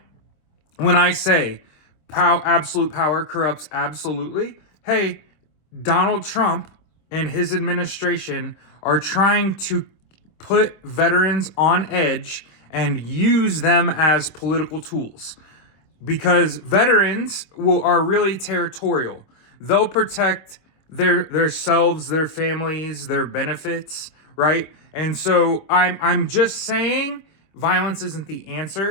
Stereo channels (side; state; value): right; late; 26 ms